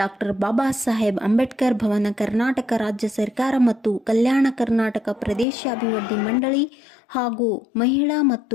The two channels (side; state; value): right; drops out; at 5.5 s